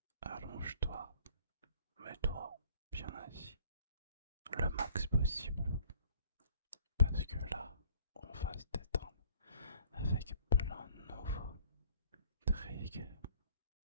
Allonge-toi. Mets-toi bien assis. Le max possible. Parce que là, on va se détendre avec plein de nouveaux tricks.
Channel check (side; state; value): both; inverted; correlation -0.55